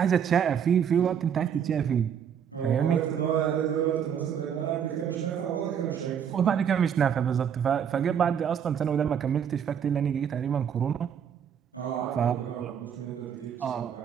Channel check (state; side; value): quieter; left; 8.2 dB